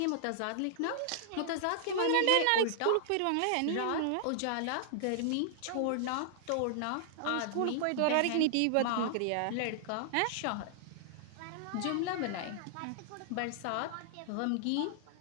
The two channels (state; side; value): different; both; correlation -0.01